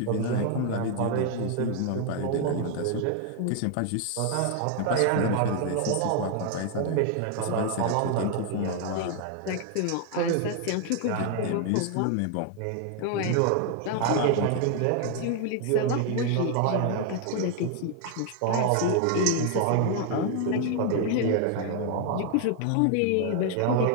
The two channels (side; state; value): both; different; correlation 0.00